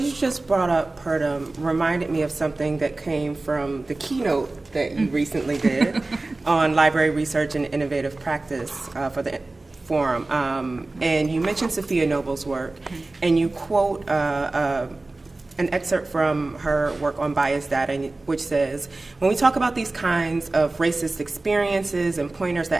you just brought up, Purdom, reminded me of something that came from the keynote that you recently did on library research and innovative practice for the forum. And you mentioned Sophia Noble's work, and you quote an excerpt from her work on bias data, which says, when we talk about these kinds of racist experiences and pointers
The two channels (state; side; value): quieter; left; 3.1 dB